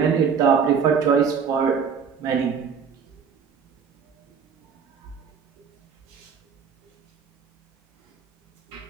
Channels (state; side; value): quieter; left; 6.5 dB